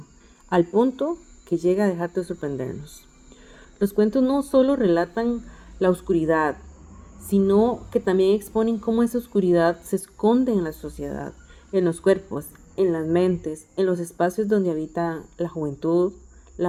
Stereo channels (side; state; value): both; identical; correlation 1.00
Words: al punto que llega a dejar de sorprendernos. Los cuentos no solo relatan la oscuridad, sino que también exponen cómo esa oscuridad se esconde en la sociedad, en los cuerpos, en las mentes, en los espacios donde habita la juventud,